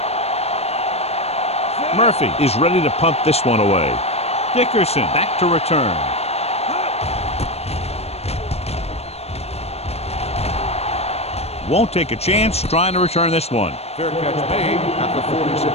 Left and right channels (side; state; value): right; late; 0.30 ms